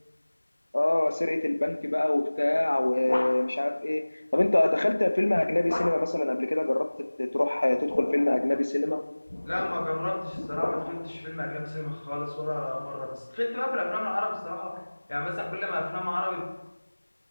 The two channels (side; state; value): both; inverted; correlation -1.00